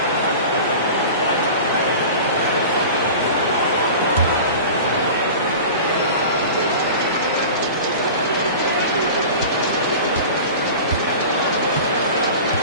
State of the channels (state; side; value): inverted; both; correlation -0.36